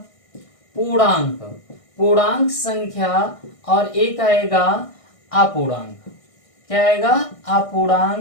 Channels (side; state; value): right; late; 1.6 ms